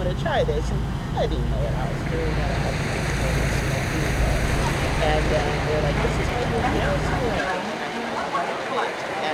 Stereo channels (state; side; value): identical; both; correlation 1.00